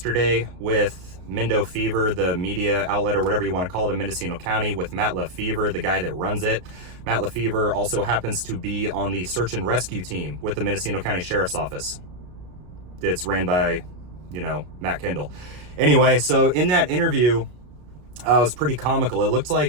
with Mendofever, the media outlet or whatever you want to call it in Mendocino County, with Matt Lefevre, the guy that runs it. Matt Lefevre also happens to be on the search and rescue team with the Mendocino County Sheriff's Office. It's ran by, Matt Kendall. Anyway, so in that interview, it was pretty comical. It looked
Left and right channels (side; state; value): left; late; 33 ms